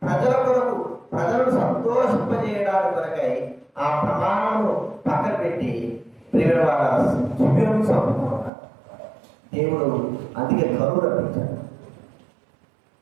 ప్రజల కొరకు, ప్రజలను సంతోషింపజేయడానికి కొరకై ఆ ప్రమాణము పక్కన పెట్టి ప్రియమైన వాళ్ళ గిబియోను చంపుతున్నారు. దేవుడు అందుకే కరువు రప్పించాడు.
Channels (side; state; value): left; drops out; at 8.5 s